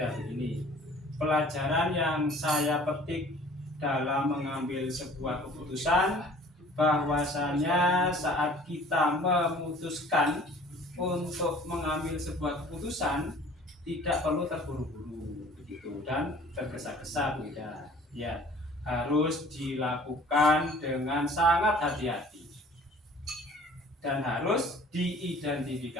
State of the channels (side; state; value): both; normal; correlation 0.50